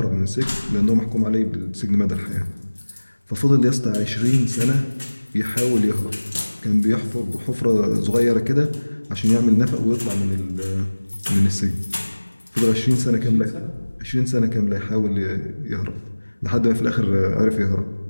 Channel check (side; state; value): both; inverted; correlation -1.00